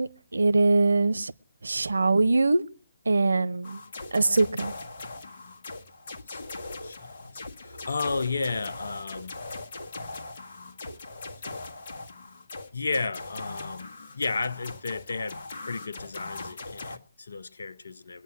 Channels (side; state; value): both; inverted; correlation -0.93